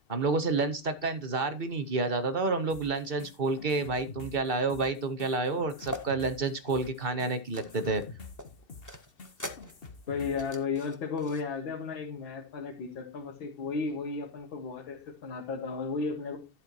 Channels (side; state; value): right; late; 2.7 ms